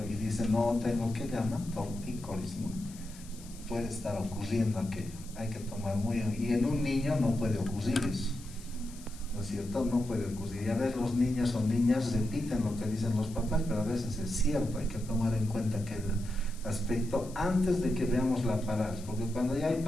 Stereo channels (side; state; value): left; noise; hiss, 19 dB below the sound